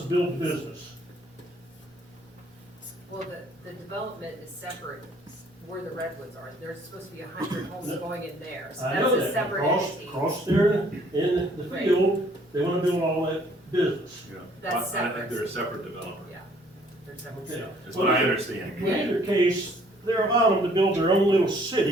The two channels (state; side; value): normal; both; correlation 0.60